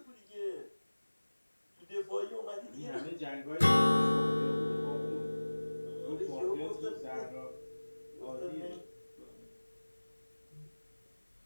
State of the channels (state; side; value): inverted; both; correlation -1.00